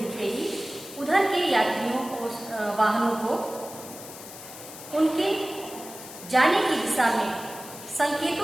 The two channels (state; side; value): noise; left; hiss, 14 dB below the sound